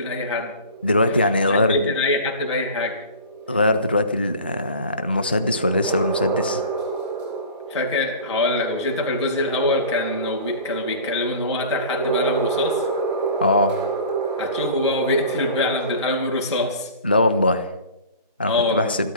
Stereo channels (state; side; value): inverted; both; correlation -0.39